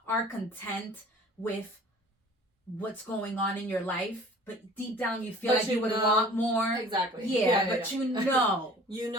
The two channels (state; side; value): normal; both; correlation 0.48